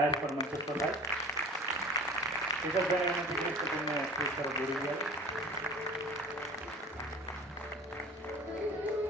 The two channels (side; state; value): both; normal; correlation 0.42